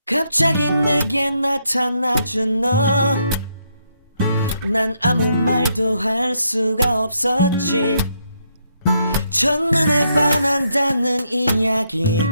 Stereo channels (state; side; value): inverted; both; correlation -0.76